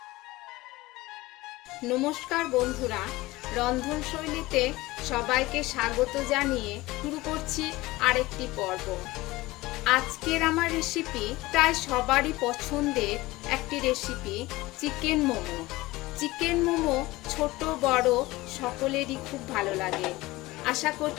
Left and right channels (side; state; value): right; quieter; 19.6 dB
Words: বন্ধুরা, রন্ধনশৈলীতে সবাইকে স্বাগত জানিয়ে শুরু করছি আরেকটি পর্ব। আজকের আমার রেসিপি প্রায় সবারই পছন্দের একটি recipe, chicken momo. Chicken momo ছোট বড় সকলেরই খুব ভালো লাগে। আশা